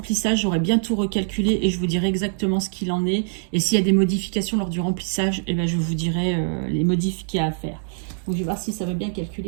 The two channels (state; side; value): silent; left; digital silence